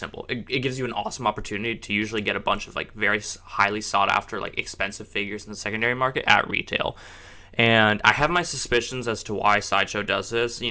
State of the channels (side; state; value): both; identical; correlation 1.00